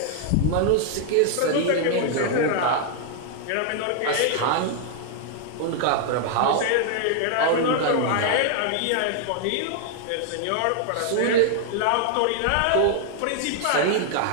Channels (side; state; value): both; different; correlation 0.00